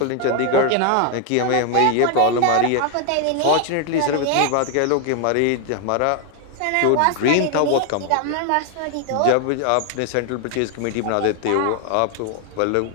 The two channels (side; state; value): both; different; correlation 0.00